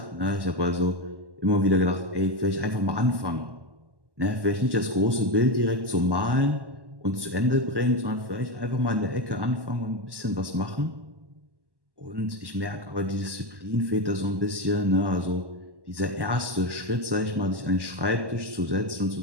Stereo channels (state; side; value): late; left; 1.1 ms